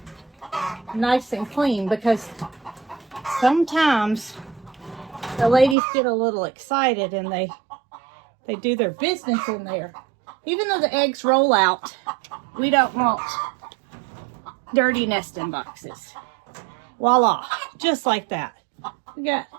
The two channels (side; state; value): left; drops out; at 5.8 s